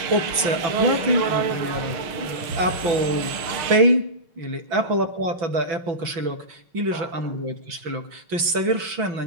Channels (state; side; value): late; left; 6.0 ms